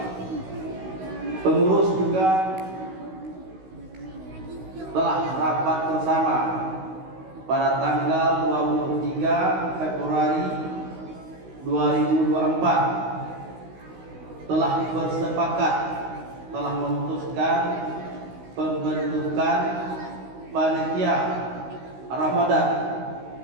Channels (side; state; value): left; late; 16 ms